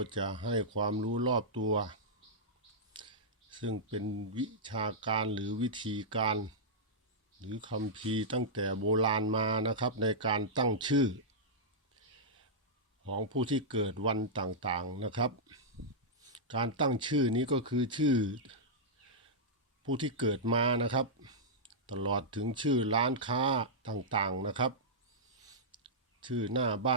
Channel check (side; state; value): both; normal; correlation -0.10